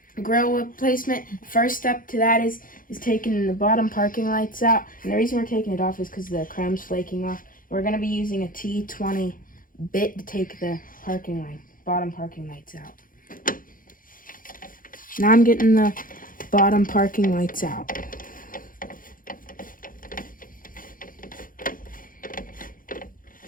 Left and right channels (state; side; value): late; right; 0.40 ms